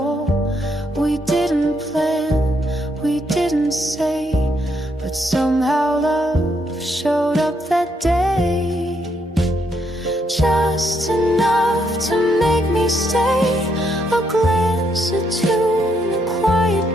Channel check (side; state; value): both; normal; correlation 0.75